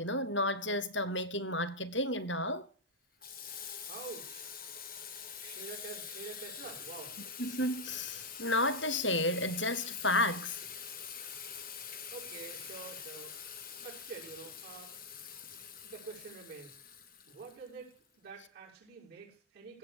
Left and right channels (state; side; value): normal; both; correlation -0.04